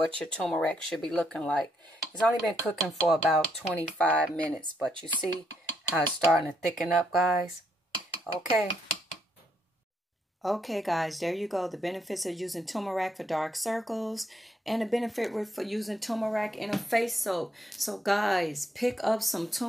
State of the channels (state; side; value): normal; both; correlation 0.75